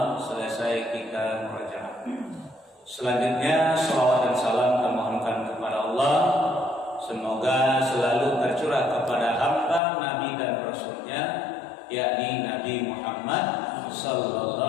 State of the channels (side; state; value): right; drops out; at 9.8 s